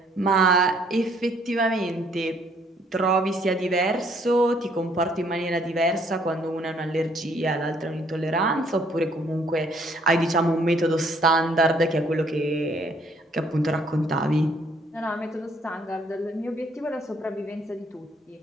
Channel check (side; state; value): both; normal; correlation 0.64